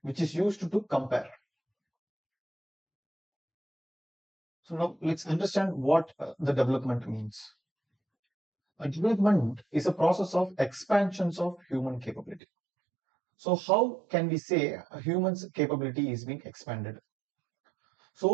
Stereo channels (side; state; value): left; drops out; at 12.4 s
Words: which is used to compare. So now let's understand what the development means. A development is a process of expansions of human capability. So how can we say a human's capability is being expanded?